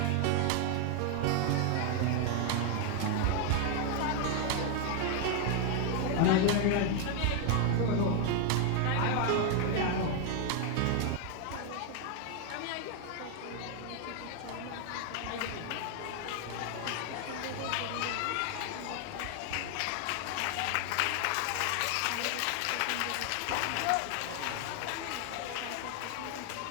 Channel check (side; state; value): both; different; correlation 0.01